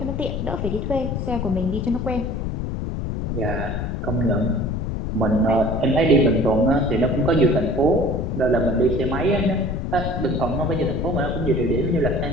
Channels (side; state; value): left; noise; rumble, 3 dB below the sound